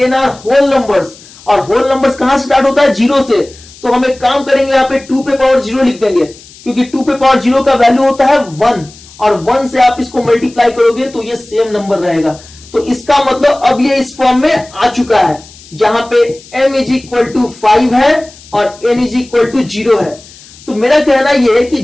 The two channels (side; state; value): left; noise; hiss, 22 dB below the sound